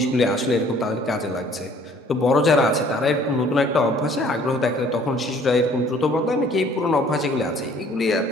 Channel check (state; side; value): normal; both; correlation 0.56